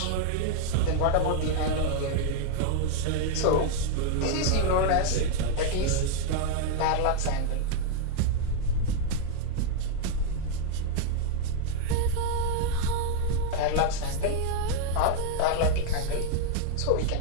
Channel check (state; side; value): different; both; correlation 0.00